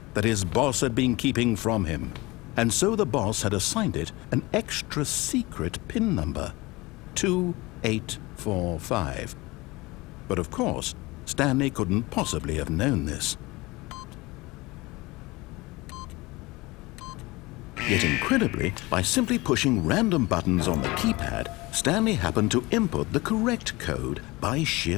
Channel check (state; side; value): quieter; right; 22.4 dB